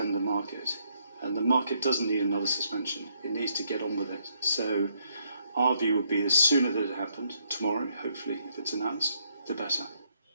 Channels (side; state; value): both; inverted; correlation -0.72